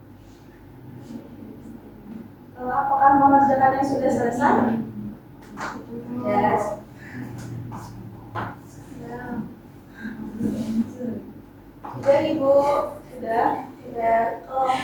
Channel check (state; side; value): identical; both; correlation 1.00